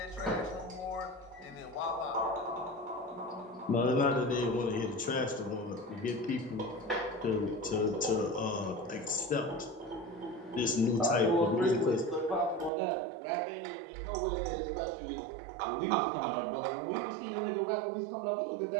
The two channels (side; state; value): left; drops out; at 12.7 s